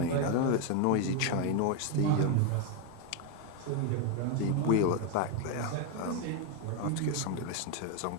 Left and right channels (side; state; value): both; different; correlation 0.02